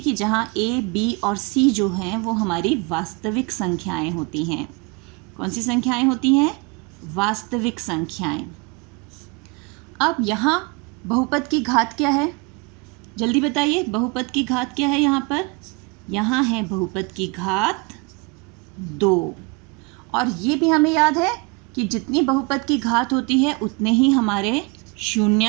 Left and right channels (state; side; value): quieter; left; 29.6 dB